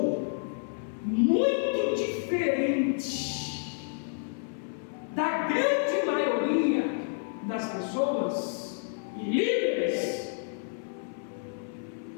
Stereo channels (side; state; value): right; silent; 58 dB below the other